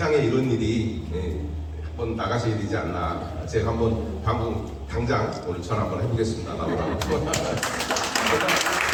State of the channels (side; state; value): both; identical; correlation 1.00